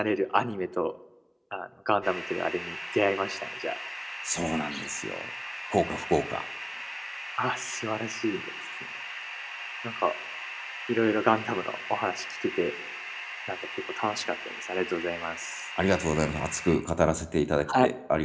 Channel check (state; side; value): identical; both; correlation 1.00